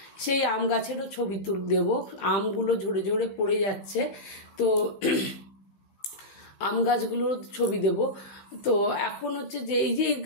সেই আম গাছেরও ছবি দেবো। আমগুলো ঝরে ঝরে পড়ে যাচ্ছে, তো আম গাছগুলোর ছবি দেব। তো এখন হচ্ছে যে এই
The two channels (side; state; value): right; late; 15 ms